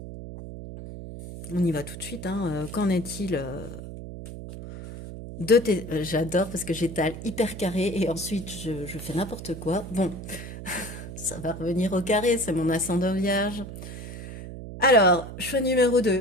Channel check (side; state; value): right; noise; hum, 10 dB below the sound